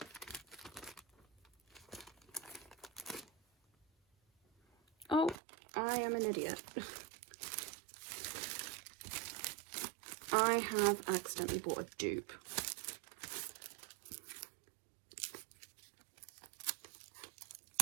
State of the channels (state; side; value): drops out; left; at 5.4 s